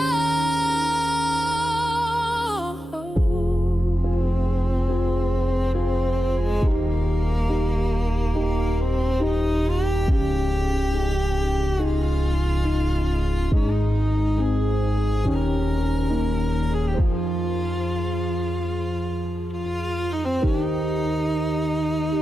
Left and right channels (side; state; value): both; normal; correlation 0.91